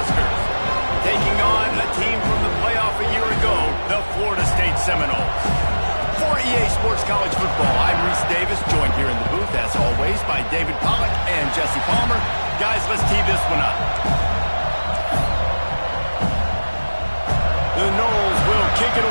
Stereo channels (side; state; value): both; inverted; correlation -1.00